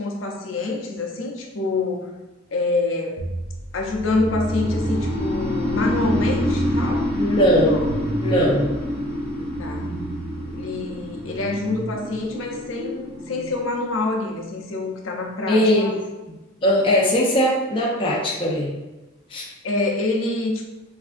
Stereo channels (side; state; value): both; normal; correlation 0.45